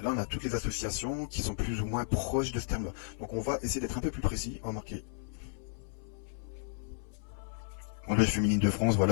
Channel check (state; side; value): silent; right; 55 dB below the other